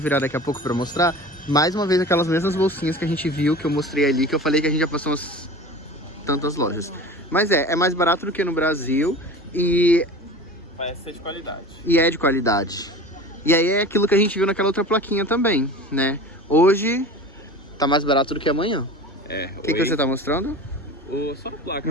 daqui a pouco pra mostrar. Mais uma vez aquelas mesmas bolsinhas que a gente viu, que eu mostrei ali, que eu falei que a gente já passou umas tantas lojas. Mas é mais barato do que no Brasil e... Parece ser de qualidade. E é de qualidade. E aí é aquilo que a gente viu naquela outra plaquinha também, né? Hoje tá mais barato do que amanhã. O que você tá mostrando? Só a placa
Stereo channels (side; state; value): both; normal; correlation 0.36